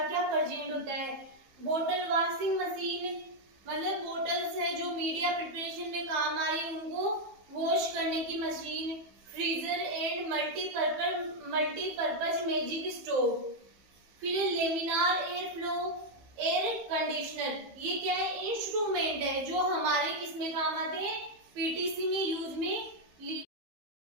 क्या प्रेजेंट होता है। बोतल वॉशिंग मशीन, मतलब बोटल्स है जो मीडिया प्रिपरेशन में काम आ रही है उनको वॉश करने की machine. Freezer and multipurpose magic stove. फिर laminar air flow air conditioner. ये क्या है, इंस्ट्रूमेंट है जो हमारे किसमें काम आते हैं, पीटीसी में यूज में ली।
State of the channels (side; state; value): left; late; 15 ms